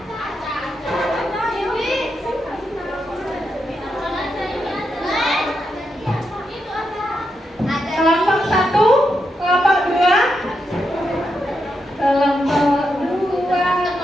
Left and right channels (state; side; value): normal; both; correlation 0.84